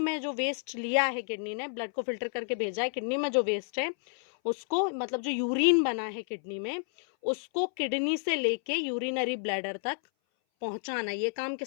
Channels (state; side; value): silent; right; 58 dB below the other